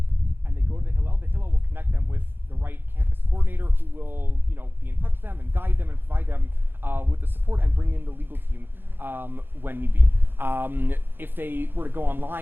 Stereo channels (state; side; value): late; left; 0.10 ms